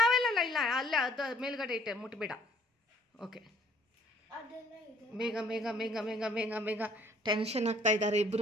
ಅವೆಲ್ಲ ಇಲ್ಲ ಅಲ್ಲೇ ಅದು ಮೇಲ್ಗಡೆ ಇಟ್ಟೆ ಮುಟ್ಬೇಡ ಓಕೆ ಬೇಗ ಬೇಗ ಬೇಗ ಬೇಗ ಬೇಗ ಬೇಗ ಟೆನ್ಷನ್ ಆಗ್ತಾ ಇದ್ದಾರೆ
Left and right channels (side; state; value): both; normal; correlation 0.59